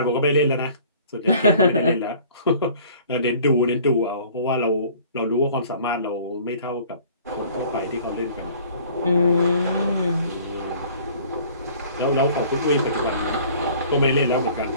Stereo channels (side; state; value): both; inverted; correlation -0.51